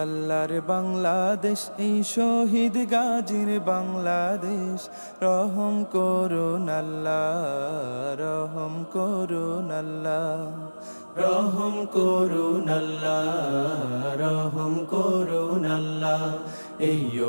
আল্লাহর বাংলাদেশ, এই শহীদ গাজীর বাংলাদেশ, রহম করুন আল্লাহ, রহম করুন আল্লাহ, রহম করুন আল্লাহ, রহম করুন আল্লাহ। এই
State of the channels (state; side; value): inverted; both; correlation -1.00